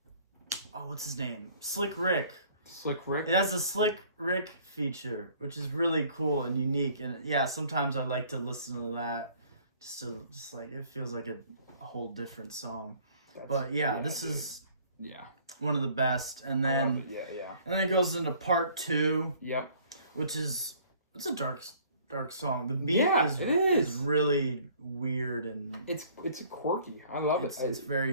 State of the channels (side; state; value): both; inverted; correlation -0.56